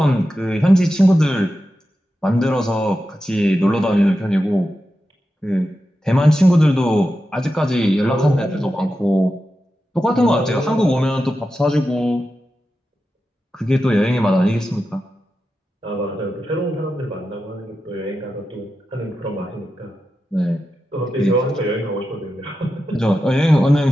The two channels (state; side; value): normal; both; correlation 0.90